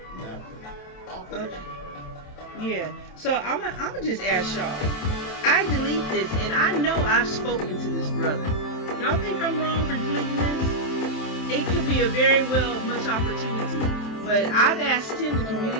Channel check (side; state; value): right; late; 27 ms